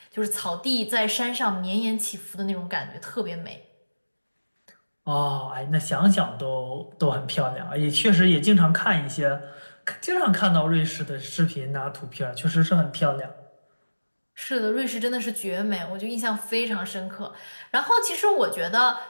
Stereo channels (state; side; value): inverted; both; correlation -1.00